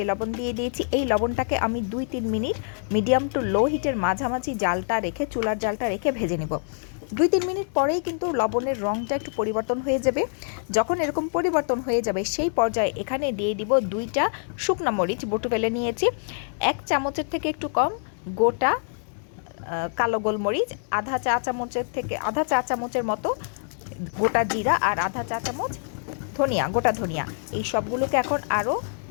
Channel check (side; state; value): right; silent; digital silence